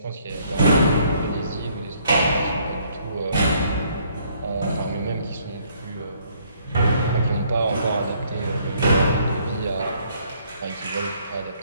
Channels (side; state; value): both; inverted; correlation -0.65